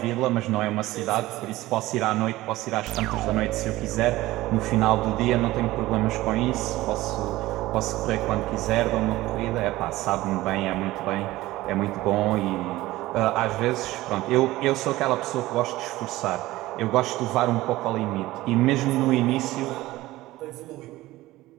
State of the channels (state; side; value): quieter; left; 17.5 dB